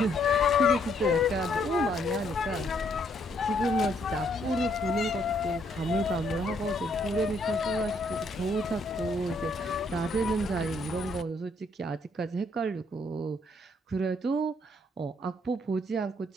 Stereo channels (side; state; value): both; normal; correlation 0.70